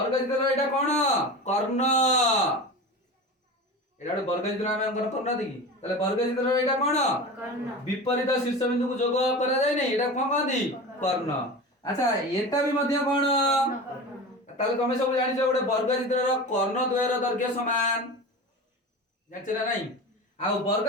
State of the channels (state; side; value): normal; both; correlation 0.30